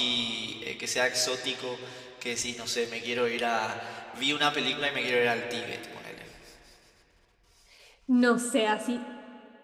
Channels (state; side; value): identical; both; correlation 1.00